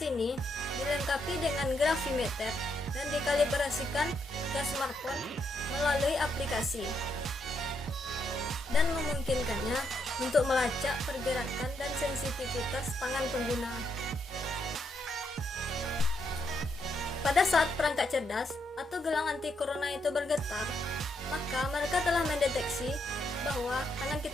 ini dilengkapi dengan gravimeter dan dikalibrasikan ke smartphone melalui aplikasi dan memungkinkannya untuk melacak pergerakan dan sensitivitas tangan pengguna. Pada saat perangkat cerdas atau gelang anti corona itu bergetar, maka mereka telah mendeteksi bahwa tangan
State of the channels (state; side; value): normal; both; correlation 0.78